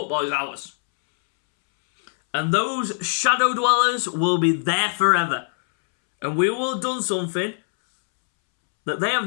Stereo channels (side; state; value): right; silent; 64 dB below the other